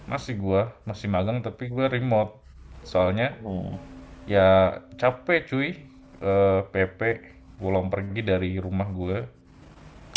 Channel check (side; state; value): both; identical; correlation 1.00